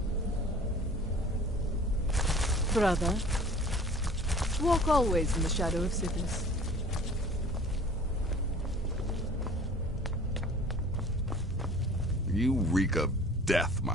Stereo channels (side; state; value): both; normal; correlation 0.47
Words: Brother, walk always in the shadow of Sithis. You reek of death,